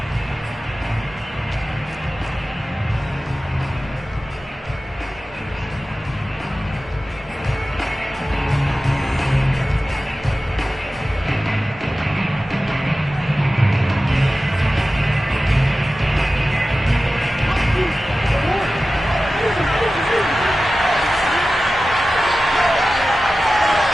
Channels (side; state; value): both; normal; correlation 0.95